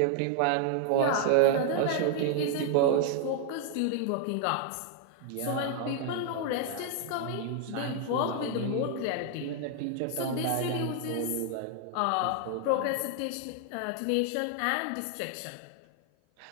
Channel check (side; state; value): both; different; correlation 0.00